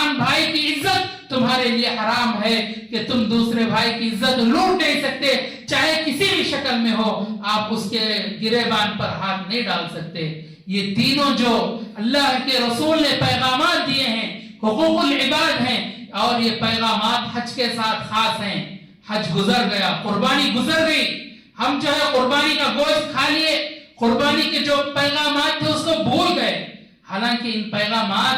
بھائی کی عزت تمہارے لیے حرام ہے، کہ تم دوسرے بھائی کی عزت لوٹ نہیں سکتے، چاہے کسی بھی شکل میں ہو. آپ اس کے گریبان پر ہاتھ نہیں ڈال سکتے. یہ تینوں جو اللہ کے رسول نے پیغامات دیے ہیں حقوق العباد ہیں، اور یہ پیغامات حج کے ساتھ خاص ہیں. حج گزر گیا، قربانی گزر گئی، ہم جو ہے قربانی کا گوشت کھا لیے، قربانی کے جو پیغامات تھے اس کو بھول گئے. حالانکہ ان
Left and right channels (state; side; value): identical; both; correlation 1.00